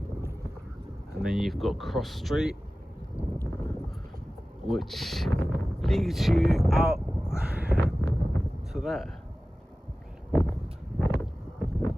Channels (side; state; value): both; normal; correlation 0.96